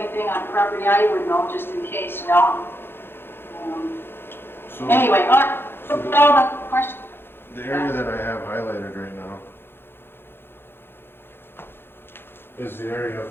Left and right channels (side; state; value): right; late; 0.11 ms